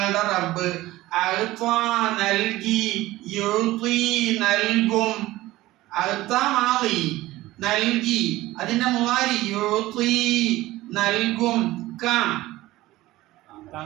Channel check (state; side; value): quieter; left; 17.4 dB